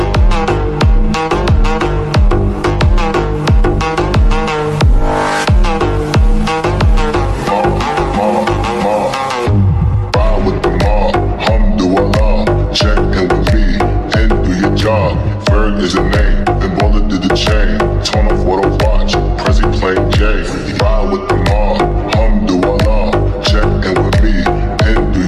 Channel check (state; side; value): identical; both; correlation 1.00